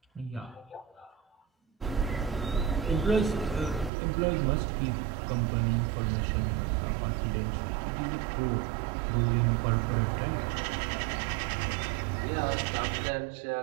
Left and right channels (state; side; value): drops out; left; at 3.9 s